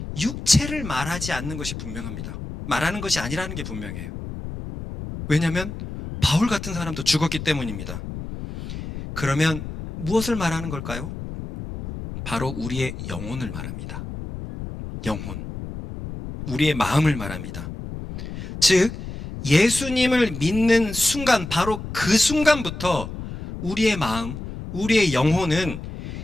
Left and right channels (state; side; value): noise; left; rumble, 9 dB below the sound